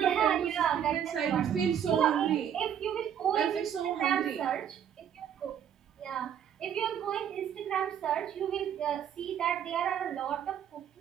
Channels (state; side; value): quieter; left; 9.1 dB